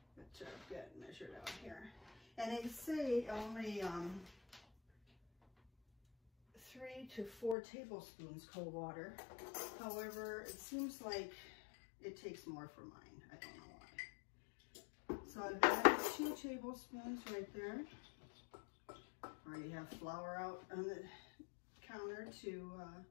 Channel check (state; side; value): drops out; right; at 7.6 s